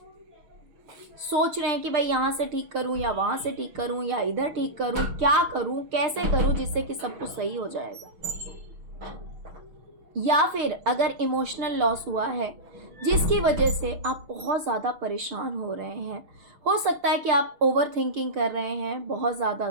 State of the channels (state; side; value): late; left; 6.6 ms